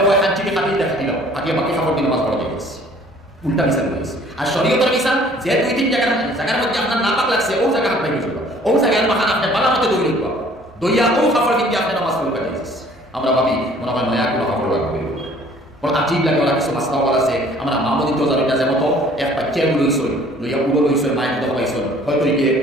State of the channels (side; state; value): both; normal; correlation 0.55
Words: হয় হাঁচিকে খাটিয়ে দেখা দিল, আগে বাকি কাপড় দিয়ে নামাজ পড়া দিয়ে গেছে, উল্টা মিসাল হয়েছে। আর শরীয়তের মিসাল যে 2-3 জায়গার মধ্যে আপনার না পাক লাগছে ও জায়গা হাত পাইবে চলবে, ও জায়গায় মাখান আপনি বালা মতো দই লিখব, দইয়া ও কাপড় কিন্তু আপনি নামাজ পড়ে কাটিয়ে। আমরা ভাবি মনে হয় নয়া কোনো কাপড় লাগবে, বড় আজীব লাগে। ওরা কিছু মাস্তা বলা আছে, আমরা মামুদি তো জানি না, যে মতো এক বাচ্চা লইছই লইয়া উড়ো লইছই মায়ের মতো পাইছই, হয়তো গিয়ে